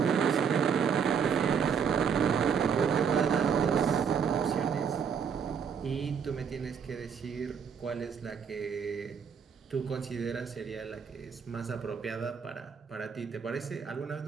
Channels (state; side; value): quieter; left; 6.9 dB